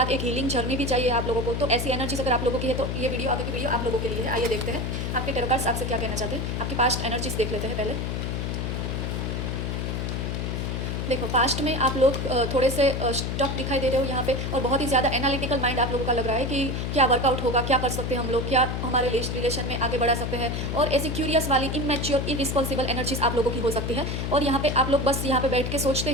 एक हीलिंग जर्नी भी चाहिए आप लोगों को। तो ऐसी एनर्जीज अगर आप लोगों की है तो ये वीडियो, आगे की वीडियो आप लोगों के लिए है। आइए देखते हैं आपके टैरो कार्ड्स आपसे क्या कहना चाहते हैं। आपकी पास्ट एनर्जीज देख लेते हैं पहले। देखो, पास्ट में आप लोग थोड़े से स्टक दिखाई दे रहे हो यहाँ पे, और बहुत ही ज़्यादा एनालिटिकल माइंड आप लोगों का लग रहा है कि क्या वर्कआउट होगा, क्या कर सकते हैं हम लोग, क्या हमारे रिलेशन में आगे बढ़ा सकते हैं। और ऐसी क्यूरियस वाली इनमेच्योर इरिस्पॉन्सिबल एनर्जीज आप लोगों की हो सकती है, और यहाँ पे आप लोग बस यहाँ पे बैठ के सोचते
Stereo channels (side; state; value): left; noise; hum, 2 dB below the sound